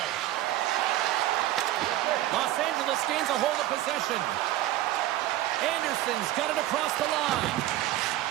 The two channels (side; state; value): left; quieter; 14.5 dB